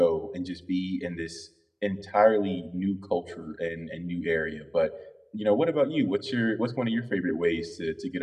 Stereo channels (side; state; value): both; identical; correlation 1.00